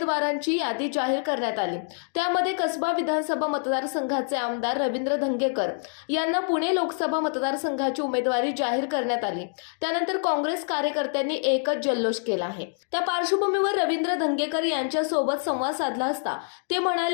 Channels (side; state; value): right; silent; digital silence